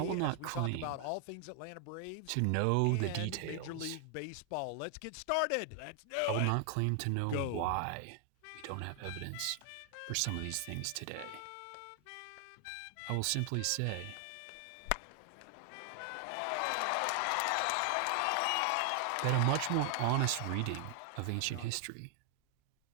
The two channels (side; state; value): both; different; correlation 0.00